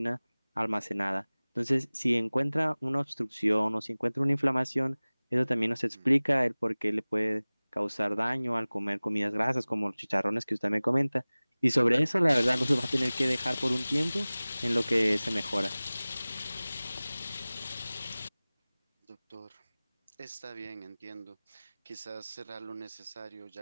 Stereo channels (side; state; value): both; inverted; correlation -0.99